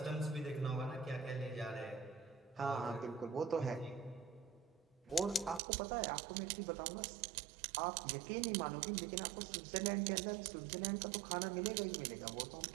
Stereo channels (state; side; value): drops out; left; at 5.6 s